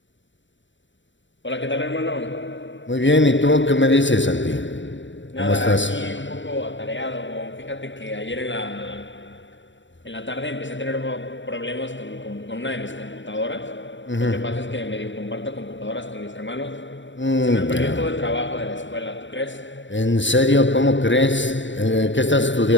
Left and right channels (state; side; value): late; right; 0.54 ms